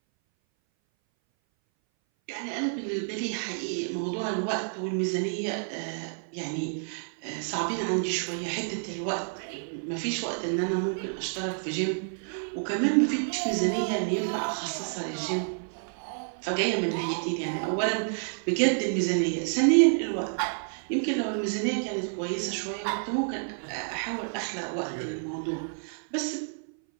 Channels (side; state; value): left; silent; 58 dB below the other